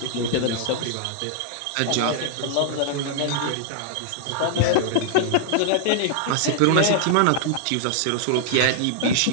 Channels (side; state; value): both; different; correlation -0.01